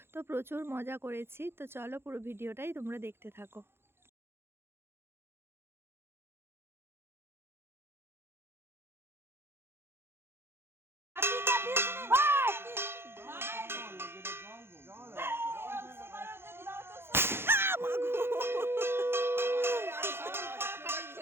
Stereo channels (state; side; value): late; left; 0.11 ms